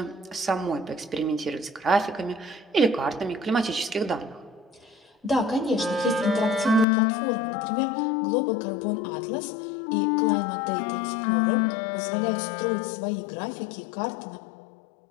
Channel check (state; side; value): drops out; right; at 6.9 s